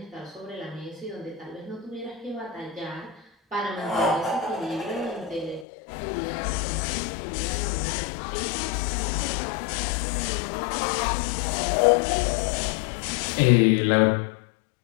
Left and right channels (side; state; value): right; drops out; at 5.7 s